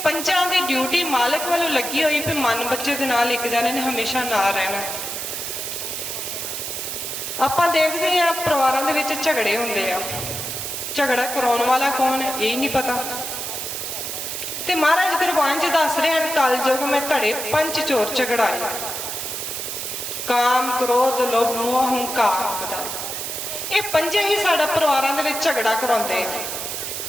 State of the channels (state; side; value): noise; right; hiss, 5 dB below the sound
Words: ਪੰਜਾਂ ਦੀ ਡਿਊਟੀ ਮਾਲਕ ਵੱਲੋਂ ਲੱਗੀ ਹੋਈ ਵੀ ਮਨ ਬੱਚੇ ਦੇ ਨਾਲ ਇੱਕ ਜਣੇ ਨੇ ਹਮੇਸ਼ਾ ਨਾਲ ਰਹਿਣਾ। ਆਪਾਂ ਦੇਖਦੇ ਆ ਪਰਿਵਾਰਾਂ ਦੇ ਵਿੱਚ ਝਗੜੇ ਹੁੰਦੇ ਆ, ਝਗੜਾ ਕਰਾਉਣ ਵਾਲਾ ਕੌਣ ਹੈ ਇਹ ਨਹੀਂ ਪਤਾ। ਤੇ ਮਹਾਰਾਜ ਗੁਰਬਾਣੀ 'ਚ ਦੱਸ ਰਹੇ ਹਨ ਕਲਯੁਗ ਮੈਂ ਘੜੇ ਪੰਜ ਚੋਰ ਝਗੜਾਏ, ਕਾਮ ਕ੍ਰੋਧ ਲੋਭ ਮੋਹ ਹੰਕਾਰ ਬਦਾ। ਇਹ ਪੰਜੇ ਹੀ ਸਾਡਾ ਪਰਿਵਾਰਾਂ ਦੇ ਵਿੱਚ ਝਗੜਾ ਕਰਾਉਂਦੇ ਆ।